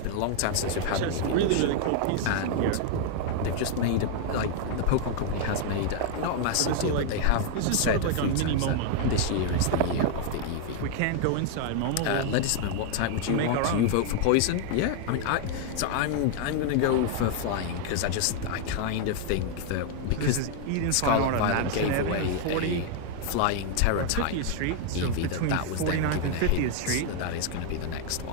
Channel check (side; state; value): both; different; correlation 0.00